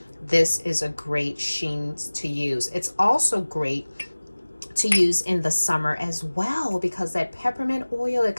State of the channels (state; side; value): inverted; both; correlation -1.00